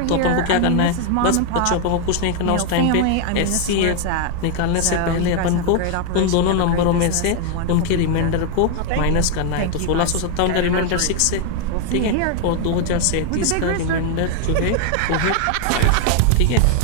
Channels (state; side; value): different; both; correlation 0.00